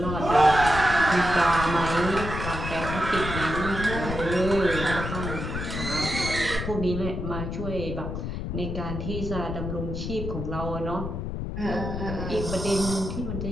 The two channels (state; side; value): noise; left; rumble, 4 dB below the sound